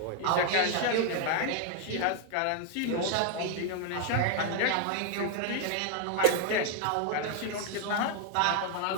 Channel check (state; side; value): different; both; correlation 0.01